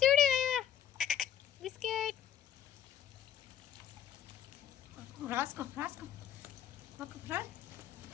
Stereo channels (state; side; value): quieter; right; 9.7 dB